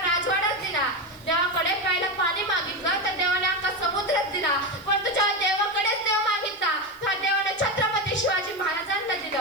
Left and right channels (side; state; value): right; noise; hiss, 26 dB below the sound